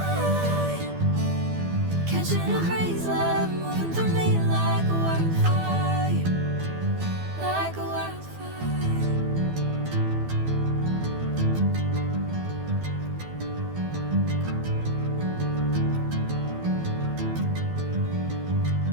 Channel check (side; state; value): left; late; 12 ms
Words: Catching a crazy love, moving